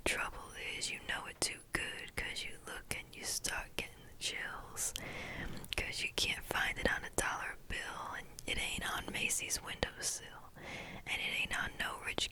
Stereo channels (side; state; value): both; identical; correlation 1.00